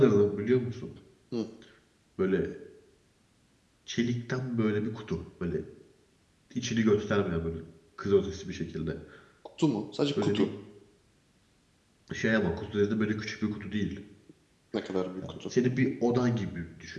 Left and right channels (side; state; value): both; identical; correlation 1.00